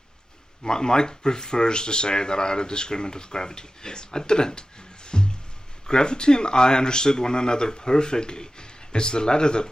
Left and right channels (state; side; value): normal; both; correlation 0.94